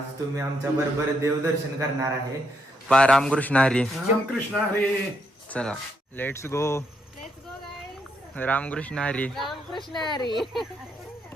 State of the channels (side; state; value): both; normal; correlation 0.77